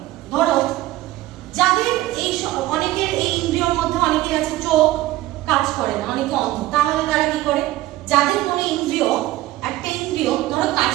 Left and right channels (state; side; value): quieter; left; 16.4 dB